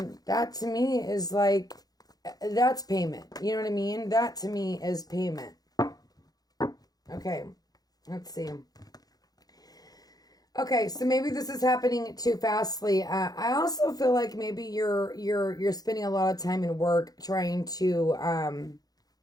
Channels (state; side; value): late; right; 0.19 ms